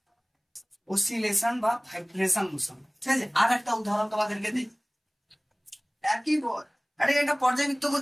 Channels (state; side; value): identical; both; correlation 1.00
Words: অসিলেশন বা ভাইব্রেশন মোশন। ঠিক আছে, আর একটা উদাহরণ তোমাদেরকে দিই, একই পথ, এটা একটা পর্যায়বৃত্ত